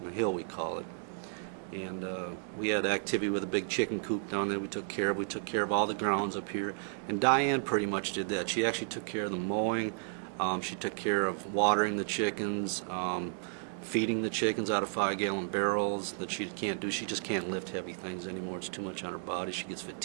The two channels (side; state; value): left; silent; digital silence